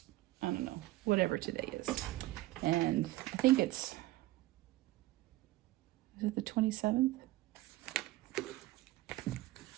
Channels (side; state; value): left; quieter; 17.8 dB